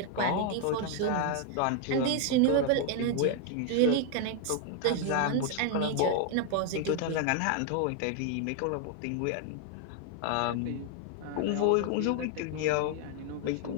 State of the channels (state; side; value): different; both; correlation 0.00